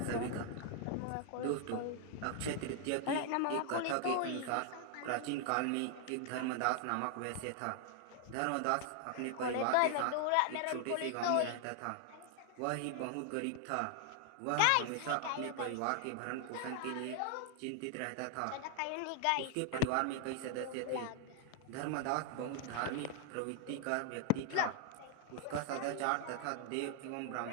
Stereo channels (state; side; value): different; both; correlation 0.00